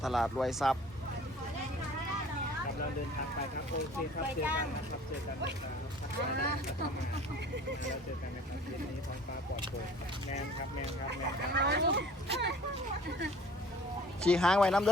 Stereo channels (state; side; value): normal; both; correlation 0.49